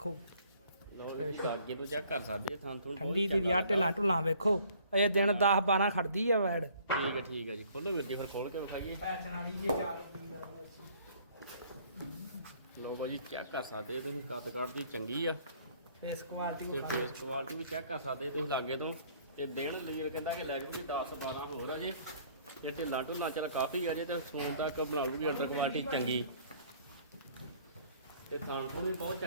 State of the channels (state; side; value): inverted; both; correlation -0.58